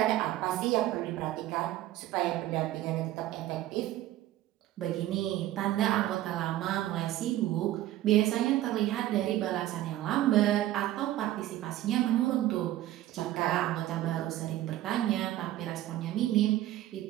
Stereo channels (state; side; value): quieter; left; 14.4 dB